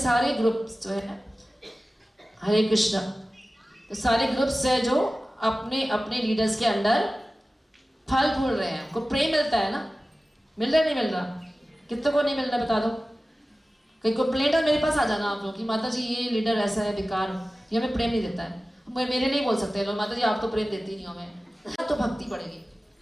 ग्रुप्स जो है, हरे कृष्णा, तो सारे ग्रुप्स है जो अपने अपने लीडर्स के अंडर फल फूल रहे हैं। उनको प्रेम मिलता है ना, मिल रहा नहीं मिल रहा? कितने को नहीं मिल रहा बता दो। कहीं कंप्लेंट है मेरे पास आ जाना आप लोग कि माता जी ये लीडर ऐसा है बेकार, ये हमें प्रेम नहीं देता है। मेरे नहीं बोल सकते लोग, माता जी आप तो प्रेम देती नहीं हो हमें। तो भक्ति बढ़ेगी।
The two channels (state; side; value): normal; both; correlation 0.96